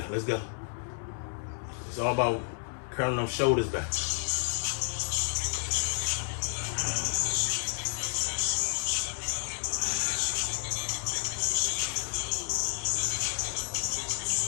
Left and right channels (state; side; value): silent; right; digital silence